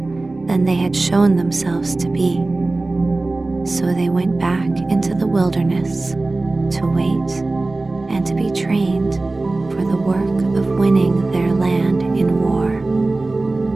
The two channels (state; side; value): quieter; left; 3.1 dB